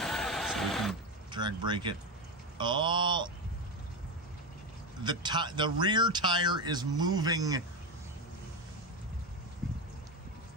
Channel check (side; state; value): both; normal; correlation 0.14